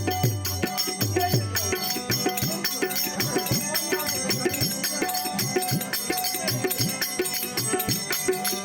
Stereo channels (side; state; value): both; identical; correlation 1.00